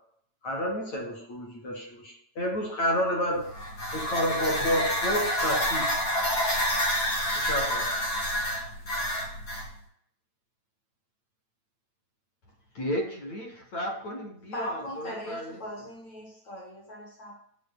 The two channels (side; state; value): right; late; 9.0 ms